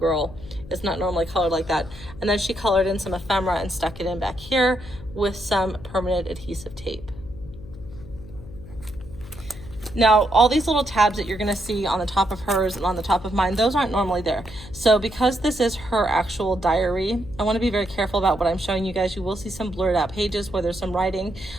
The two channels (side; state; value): left; noise; hum, 16 dB below the sound